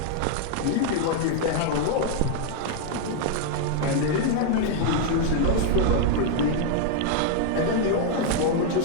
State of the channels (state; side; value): different; both; correlation 0.00